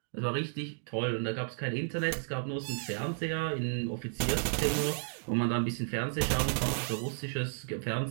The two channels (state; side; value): silent; left; digital silence